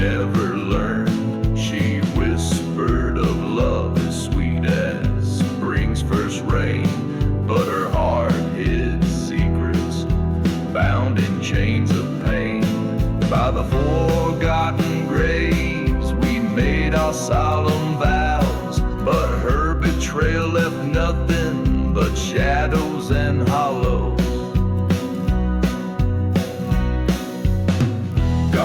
learned. She whispered of love as sweet as spring's first rain, but her heart hid secrets, bound in chains of pain. By the forgotten graves we made our solemn vows, but her betrayal left nothing but shadows and hollows.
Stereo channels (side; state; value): both; identical; correlation 1.00